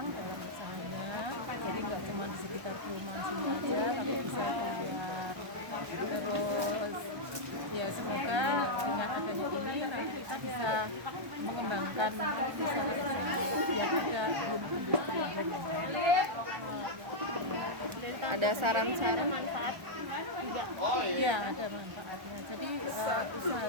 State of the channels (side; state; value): left; late; 1.3 ms